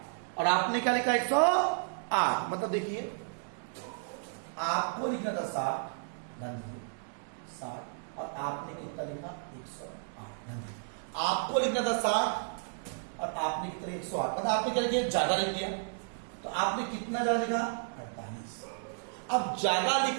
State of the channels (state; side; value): silent; left; digital silence